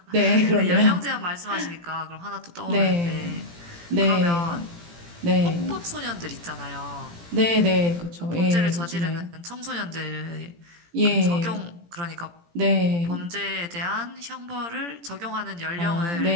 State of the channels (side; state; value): left; late; 17 ms